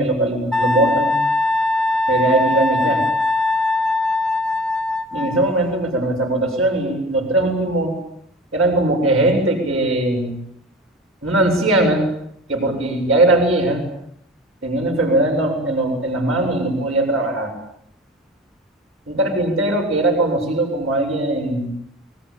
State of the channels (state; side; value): normal; both; correlation 0.40